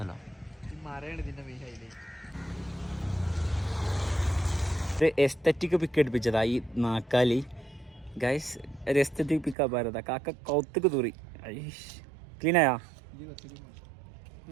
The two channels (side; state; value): left; drops out; at 9.6 s